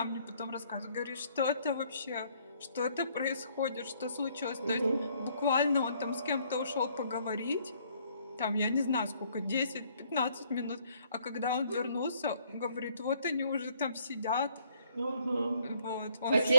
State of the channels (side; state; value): both; inverted; correlation -0.65